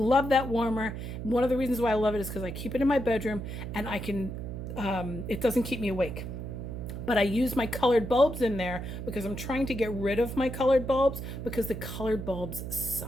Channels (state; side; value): noise; right; hum, 7 dB below the sound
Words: that warmer. One of the reasons why I love it is because I keep it in my bedroom and I can, it doesn't keep me awake. But I use my colored bulbs in there because I'm trying to get rid of my colored bulbs because the colored bulbs